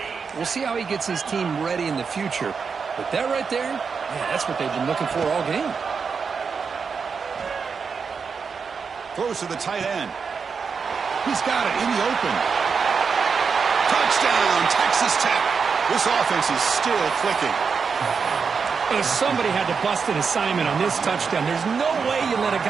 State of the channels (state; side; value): quieter; left; 5.6 dB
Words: We'll see how he gets his team ready in the future. But that right there, yeah, that's what they've been looking for all game. Throws to the tight end. He's got it in the open. Touchdown, Texas Tech. This offense is still clicking. Well, somebody had to bust an assignment on this touchdown. There's no way you let a